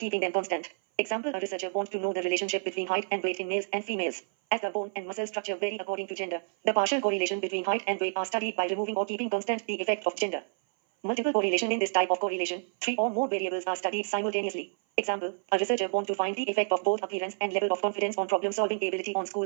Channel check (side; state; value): left; silent; 56 dB below the other